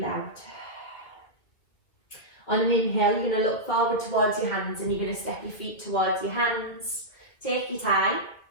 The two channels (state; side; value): late; right; 2.4 ms